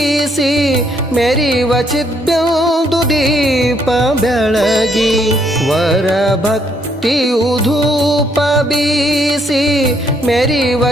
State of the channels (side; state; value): both; normal; correlation 0.70